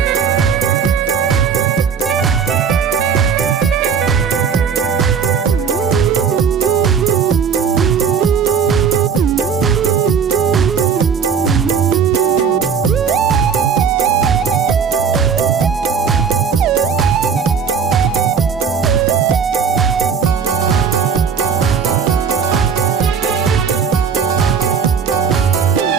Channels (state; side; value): quieter; left; 6.6 dB